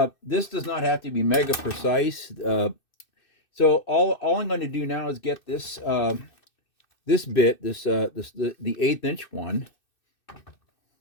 This does not have to be mega precise. So all I'm going to do now is get this this bit, the 1/8 inch one.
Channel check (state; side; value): late; right; 2.6 ms